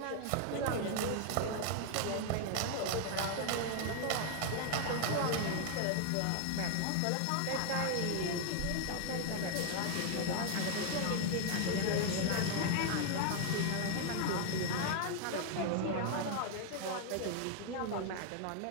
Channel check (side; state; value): both; different; correlation 0.00